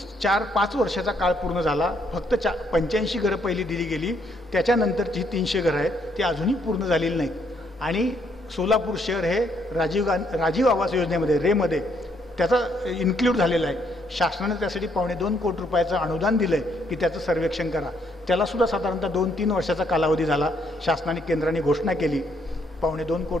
4-5 वर्षाचा काळ पूर्ण झाला, फक्त 85 घरं पहिली दिली गेली, त्याच्यानंतरची 300 घरं आहेत ती अजूनही पूर्ण झालेली नाहीत आणि सोलापूर शहर हे राजीव आवास योजनेमध्ये रेमध्ये त्याचा इन्क्ल्यूड झालेला आहे. शासनाने त्यासाठी 2.25 कोटी रुपयाचं अनुदान दिलं आहे की त्याचं सर्वेक्षण करा. त्यालासुद्धा साधारणतः 2-3 वर्षाचा कालावधी झाला. शासनाने केंद्राने घोषणा केली, 2.25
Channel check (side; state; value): both; normal; correlation 0.71